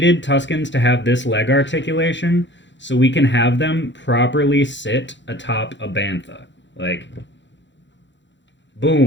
Tuskens to have this leg articulation so we can have them properly sit atop a Bantha. Like,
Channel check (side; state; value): right; late; 0.53 ms